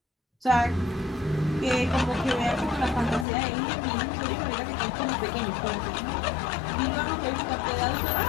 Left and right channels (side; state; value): right; drops out; at 3.2 s